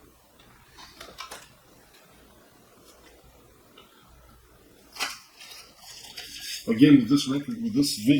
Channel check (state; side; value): identical; both; correlation 1.00